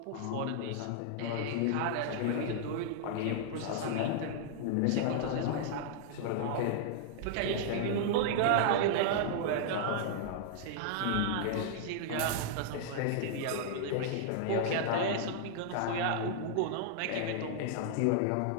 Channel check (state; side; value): different; both; correlation -0.01